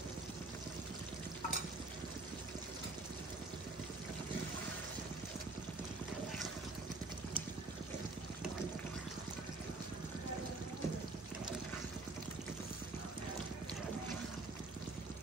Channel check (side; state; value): left; quieter; 3.3 dB